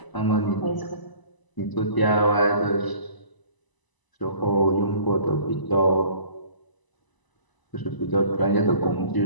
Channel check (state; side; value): late; right; 1.0 ms